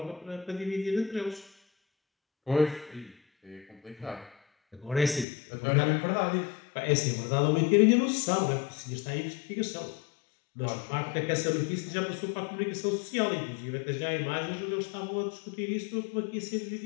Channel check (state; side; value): drops out; right; at 5.2 s